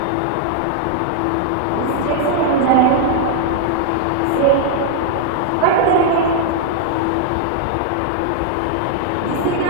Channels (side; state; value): both; different; correlation 0.00